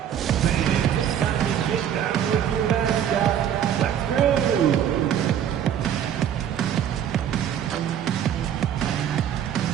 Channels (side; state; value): left; quieter; 9.6 dB